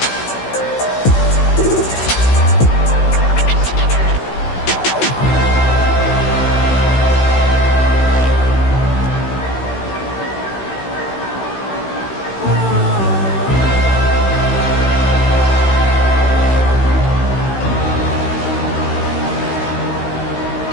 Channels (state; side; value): late; right; 16 ms